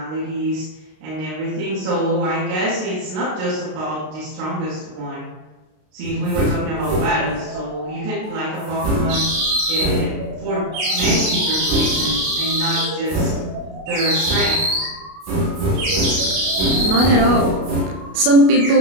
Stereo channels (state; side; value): late; left; 32 ms